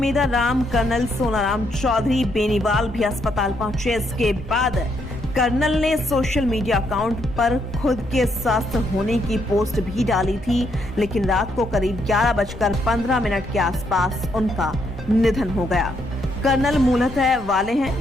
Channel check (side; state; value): both; normal; correlation 0.75